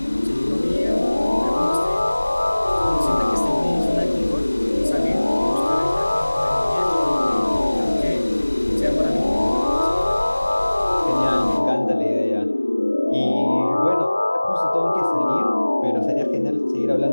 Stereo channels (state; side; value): inverted; both; correlation -1.00